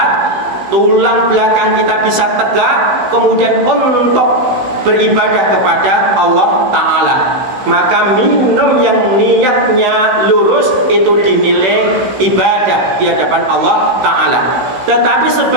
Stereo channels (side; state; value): left; late; 16 ms